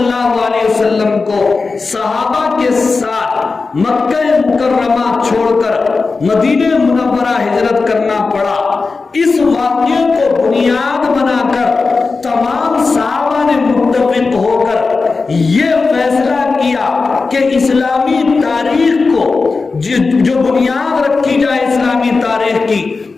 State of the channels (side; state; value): right; quieter; 4.2 dB